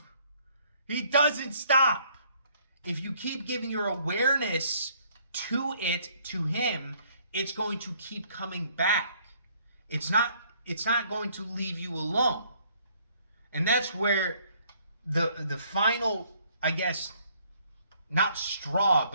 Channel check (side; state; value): both; inverted; correlation -0.63